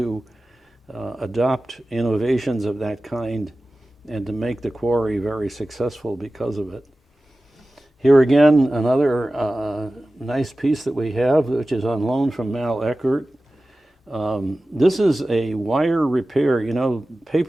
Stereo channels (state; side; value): normal; both; correlation 0.96